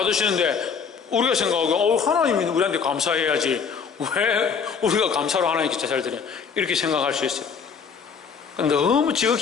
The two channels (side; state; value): right; quieter; 6.2 dB